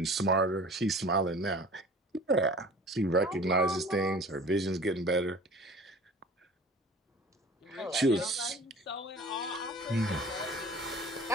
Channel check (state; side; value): normal; both; correlation 0.44